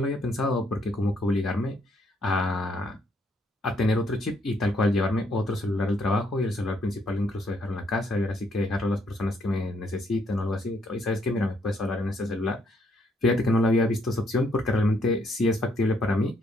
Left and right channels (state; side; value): normal; both; correlation 0.71